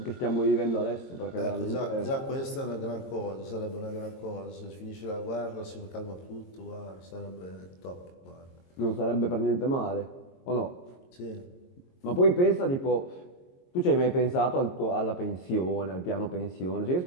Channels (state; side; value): late; right; 22 ms